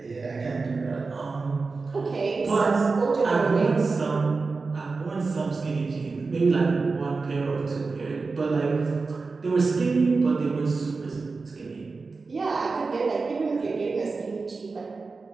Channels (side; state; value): left; quieter; 4.2 dB